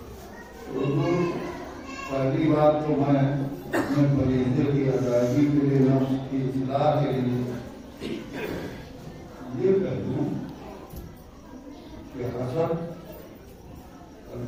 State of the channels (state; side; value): identical; both; correlation 1.00